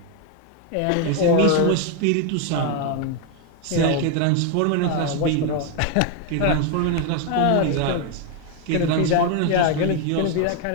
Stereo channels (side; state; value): both; different; correlation 0.01